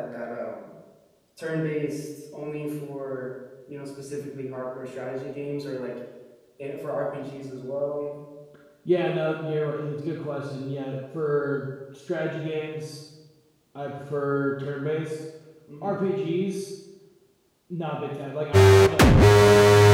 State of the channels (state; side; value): identical; both; correlation 1.00